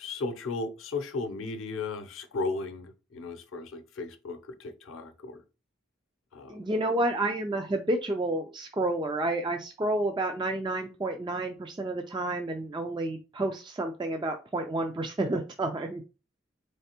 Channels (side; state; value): both; normal; correlation 0.48